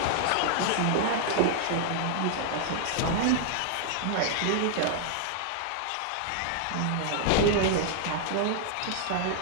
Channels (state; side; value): different; both; correlation -0.01